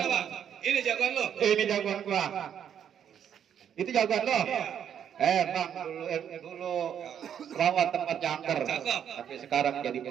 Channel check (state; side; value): quieter; left; 8.9 dB